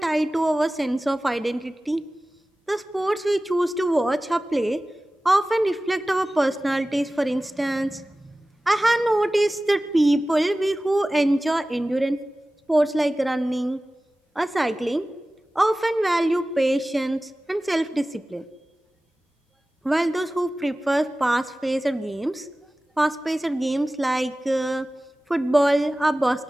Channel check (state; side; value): normal; both; correlation 0.97